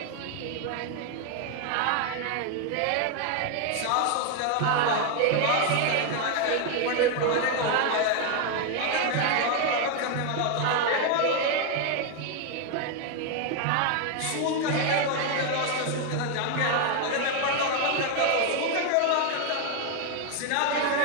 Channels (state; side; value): different; both; correlation 0.01